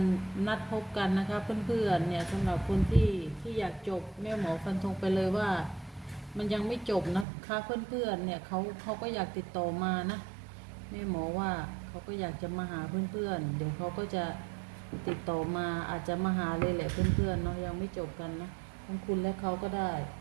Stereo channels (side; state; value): left; drops out; at 7.2 s